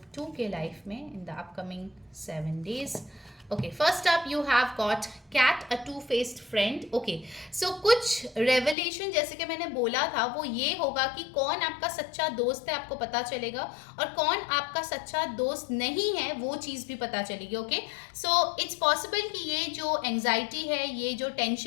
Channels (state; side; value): drops out; right; at 8.8 s